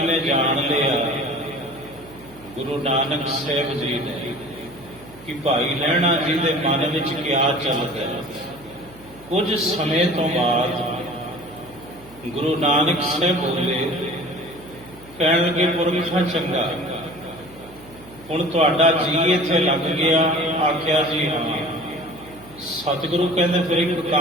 ਨੇ ਜਾਣ ਲਿਆ ਗੁਰੂ ਨਾਨਕ ਸਾਹਿਬ ਜੀ ਨੇ ਕਿ ਭਾਈ ਲਹਿਣਾ ਜੀ ਦੇ ਮਨ ਵਿੱਚ ਕਿਆ ਚੱਲਦਾ ਹੈ। ਕੁਝ ਸਮੇਂ ਤੋਂ ਬਾਅਦ ਗੁਰੂ ਨਾਨਕ ਸਾਹਿਬ ਬੋਲੇ, ਕਹਿਣ ਲੱਗੇ ਪੁਰਖਾ ਚੰਗਾ, ਹੁਣ ਤੁਹਾਡਾ ਜੀ ਇੱਥੇ ਲੱਗ ਗਿਆ। ਆਖਿਆ ਜੀ ਹਾਂ। ਸਤਿਗੁਰੂ ਕਹਿੰਦੇ ਫਿਰ ਇੱਕ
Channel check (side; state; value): right; noise; hum, 22 dB below the sound